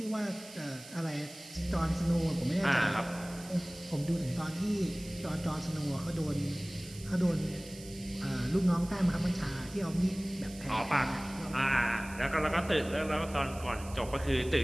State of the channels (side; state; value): right; noise; hiss, 17 dB below the sound